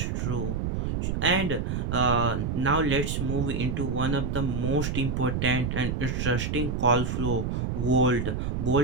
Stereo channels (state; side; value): noise; right; rumble, 1 dB below the sound